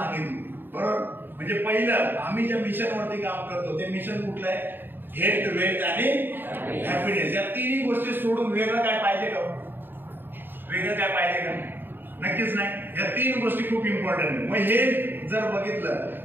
बरोबर, म्हणजे पहिलं आम्ही ज्या मिशनवरती काम करतो ते मिशन कुठलं आहे? हेल्थ, वेल्थ आणि हॅपीनेस. या तिन्ही गोष्टी सोडून वेगळं काय पाहिजे का? वेगळं काय पाहिजे का? नक्कीच नाही. या तीन गोष्टी खूप इम्पॉर्टंट आहे. मग हे जर बघितलं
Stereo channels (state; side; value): late; left; 0.096 ms